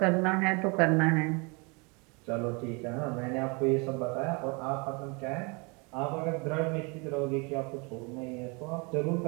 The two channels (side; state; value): left; quieter; 30.5 dB